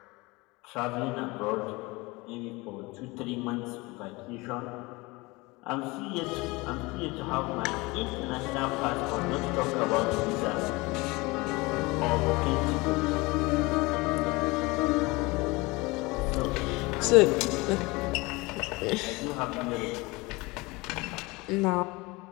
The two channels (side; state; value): right; quieter; 23.8 dB